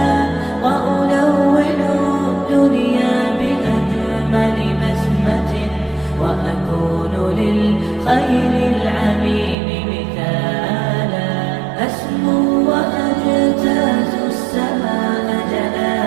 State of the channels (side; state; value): left; drops out; at 9.6 s